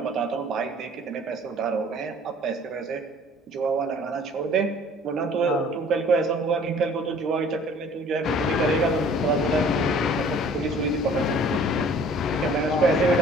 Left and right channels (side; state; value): both; normal; correlation 0.52